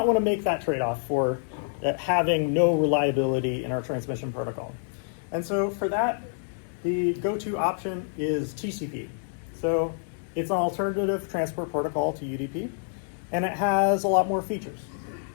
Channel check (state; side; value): silent; right; digital silence